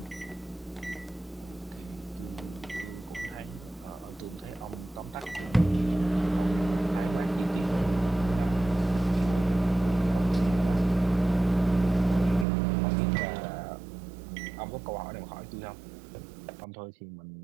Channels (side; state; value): left; drops out; at 12.5 s